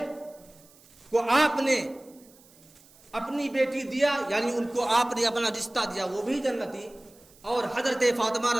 کو آپ نے اپنی بیٹی دیا، یعنی ان کو آپ نے اپنا رشتہ دیا، وہ بھی جنتی، اور حضرت فاطمہ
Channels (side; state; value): right; noise; hiss, 27 dB below the sound